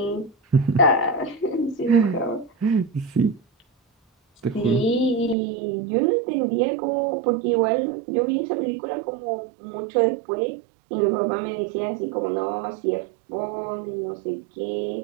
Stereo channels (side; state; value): left; drops out; at 5.4 s